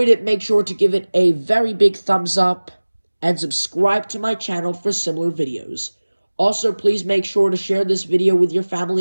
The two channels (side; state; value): both; inverted; correlation -1.00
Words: it, make sure to give it a very big thumbs up and subscribe to my channel for similar videos. Also, please make sure to share this video with your